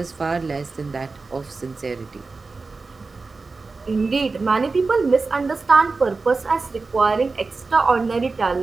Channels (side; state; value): left; quieter; 4.0 dB